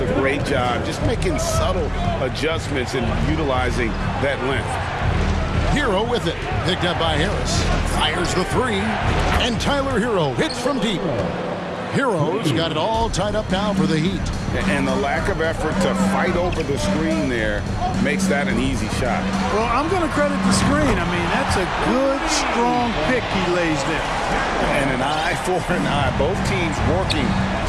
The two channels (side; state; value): both; identical; correlation 1.00